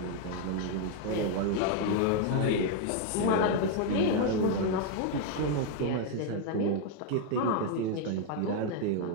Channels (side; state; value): both; different; correlation 0.01